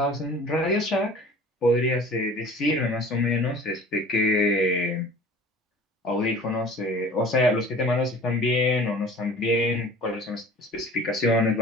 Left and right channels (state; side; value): normal; both; correlation 0.45